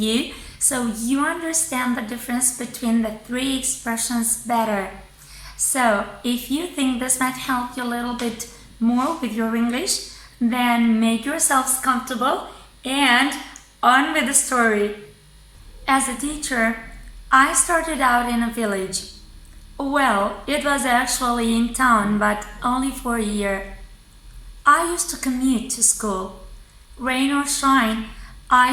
so you understand the difference between the three expressions better. So, if you think this might help you a little bit more with your English, then make yourselves comfortable and on with the story. As a teacher, I started out in a village. Well, it was actually in town, but only for a year. I used to commute to school. Rain or shine,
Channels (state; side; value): identical; both; correlation 1.00